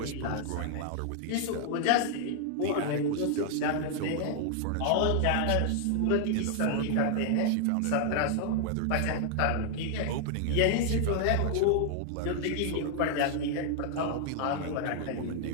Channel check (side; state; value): both; different; correlation 0.00